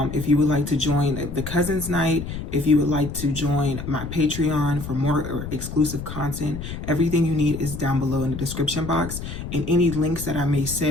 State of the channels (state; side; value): noise; left; rumble, 8 dB below the sound